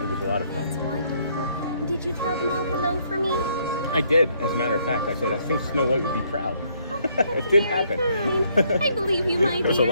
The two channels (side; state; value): both; inverted; correlation -0.69